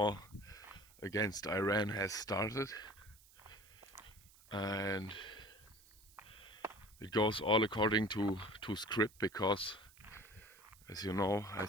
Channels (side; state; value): right; noise; hiss, 25 dB below the sound